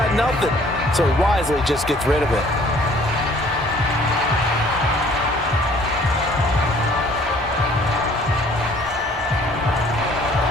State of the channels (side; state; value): both; normal; correlation 0.56